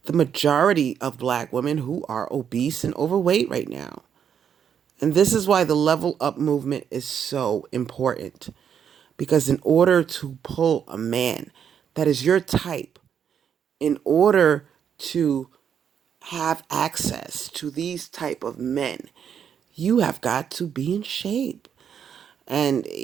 the majority of black women who are obese and overweight right now. And this is why the level up movement is so important. Because in order to pull a man that is your type, in order to have access to these type of men, you have got to be in shape. And,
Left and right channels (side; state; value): left; quieter; 8.1 dB